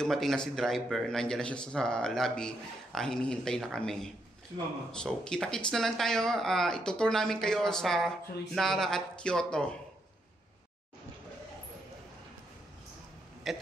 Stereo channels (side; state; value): both; normal; correlation 0.78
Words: na si driver, nandiyan na siya sa lobby, hinihintay na kami. So, kita-kits na lang tayo. Itutour namin kayo sa Nara at Kyoto.